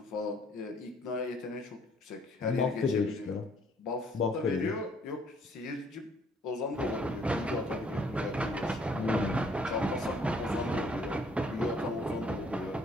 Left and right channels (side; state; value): both; normal; correlation 0.62